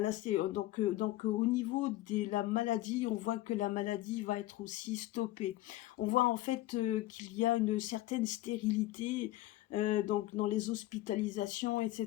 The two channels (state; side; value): quieter; right; 16.2 dB